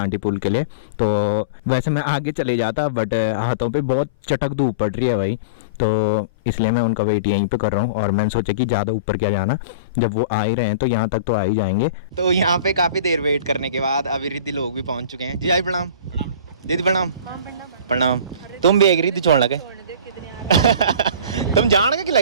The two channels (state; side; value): inverted; both; correlation -0.33